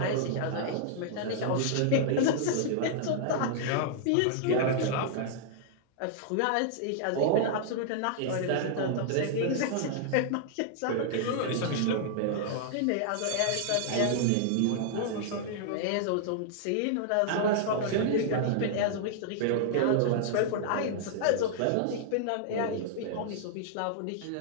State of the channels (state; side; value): different; both; correlation -0.01